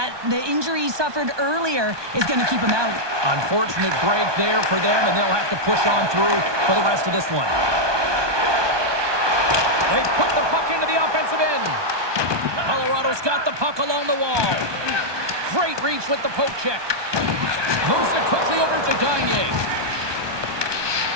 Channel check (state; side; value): late; left; 1.2 ms